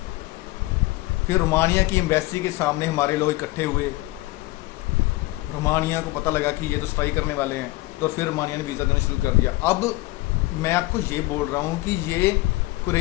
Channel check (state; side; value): quieter; right; 20.1 dB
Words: फिर रोमानिया की एम्बेसी के सामने हमारे लोग इकट्ठे हुए, रोमानिया को पता लगा कि ये तो स्ट्राइक करने वाले हैं, तो फिर रोमानिया ने वीज़ा देना शुरू कर दिया। अब मैं आपको ये बोल रहा हूँ कि ये